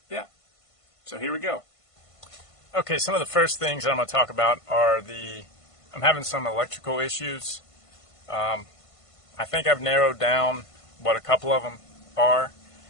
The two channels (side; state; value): right; late; 1.5 ms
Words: so here we go. Okay, some of the first things I'm going to talk about are I'm having some electrical issues. I think I've narrowed down what a couple of them are,